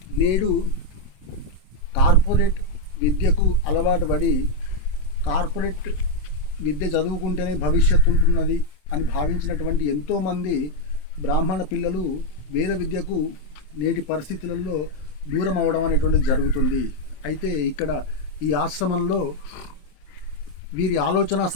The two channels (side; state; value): right; late; 27 ms